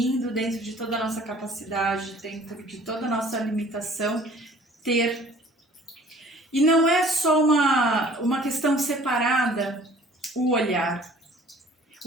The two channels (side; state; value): both; normal; correlation 0.52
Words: dentro de toda a nossa capacidade, dentro de toda a nossa limitação, ter. E não é só uma questão separada, o olhar.